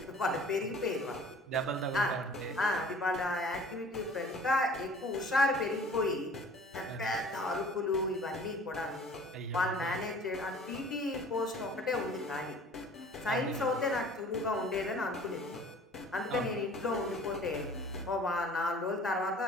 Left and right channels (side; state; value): both; normal; correlation 0.49